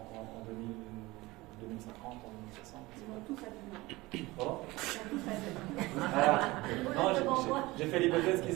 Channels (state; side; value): quieter; left; 20.8 dB